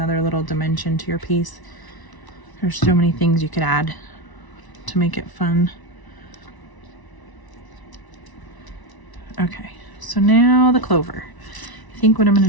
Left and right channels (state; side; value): late; right; 1.0 ms